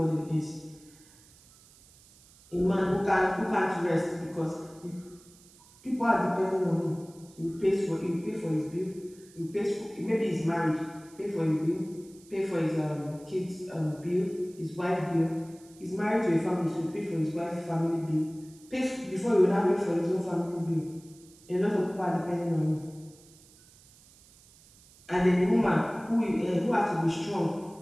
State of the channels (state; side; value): noise; right; hiss, 25 dB below the sound